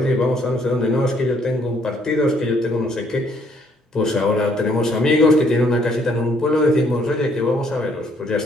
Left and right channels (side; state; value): both; normal; correlation 0.66